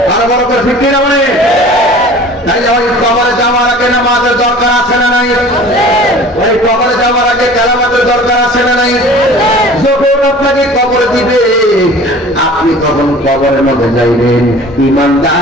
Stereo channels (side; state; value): both; normal; correlation 0.44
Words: আরো বড় করে ঠিক কিনা বলে? তাই ওই কবরে যাওয়ার আগে নামাজের দরকার আছে না নাই? ওই কবরে যাওয়ার আগে কালামাতের দরকার আছে না নাই? যখন আপনাকে কবর দিবে আপনি তখন কবরের মধ্যে যাইবেন